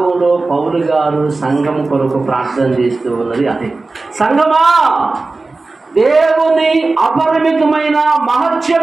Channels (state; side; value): quieter; left; 3.5 dB